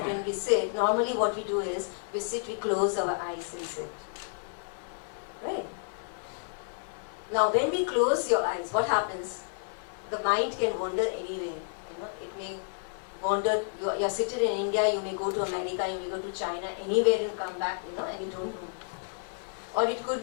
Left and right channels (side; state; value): right; silent; digital silence